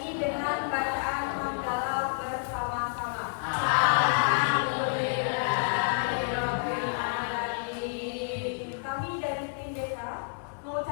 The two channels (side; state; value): right; silent; digital silence